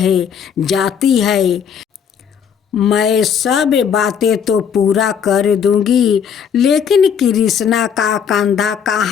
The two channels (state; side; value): quieter; right; 7.5 dB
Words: जाती है। मैं सब बातें तो पूरा कर दूंगी, लेकिन कृष्णा का कंधा